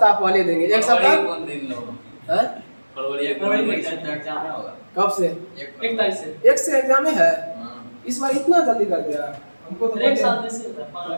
पहले देंगे। 1 सप्ताह फरवरी में एग्जाम होगा। कब से? 1 तारीख से। 1 से एग्जाम है। इस बार इतना जल्दी कर दिया हमको तो। 1 साल से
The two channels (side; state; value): both; inverted; correlation -1.00